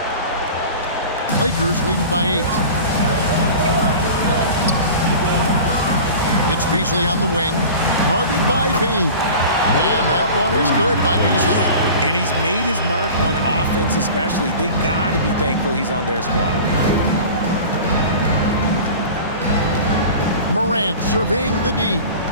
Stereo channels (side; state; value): both; inverted; correlation -0.37